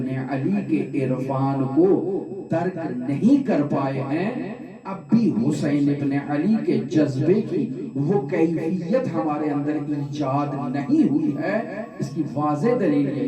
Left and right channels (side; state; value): both; identical; correlation 1.00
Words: علی کے عرفان کو درک نہیں کر پائے ہیں، اب بھی حسین ابن علی کے جذبے کی وہ کیفیت ہمارے اندر ایجاد نہیں ہوئی ہے۔ اس کی واضح دلیل